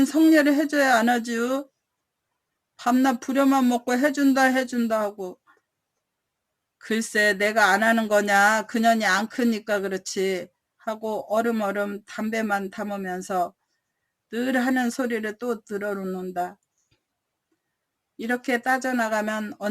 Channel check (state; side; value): identical; both; correlation 1.00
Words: 성례를 해줘야 안 하지요. 밤낮 부려만 먹고 해준다 하고. 글쎄 내가 안 하는 거냐 그년이 안 크니까 그렇지 하고 얼음얼음 담배만 담으면서 늘 하는 소리를 또 들어놓는다. 이렇게 따져나가면